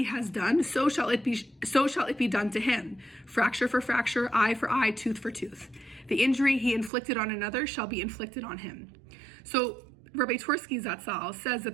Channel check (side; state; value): left; drops out; at 6.9 s